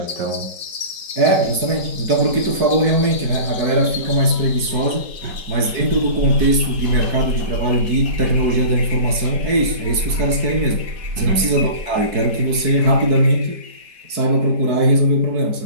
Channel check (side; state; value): left; late; 4.6 ms